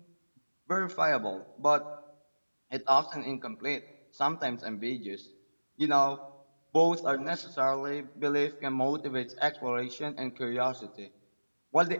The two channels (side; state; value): both; inverted; correlation -1.00